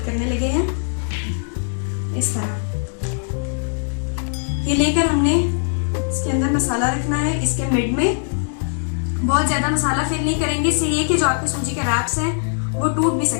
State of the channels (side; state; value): right; silent; digital silence